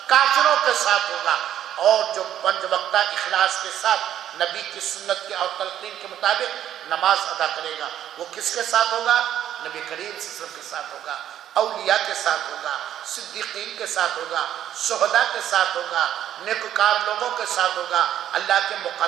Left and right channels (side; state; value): left; quieter; 11.0 dB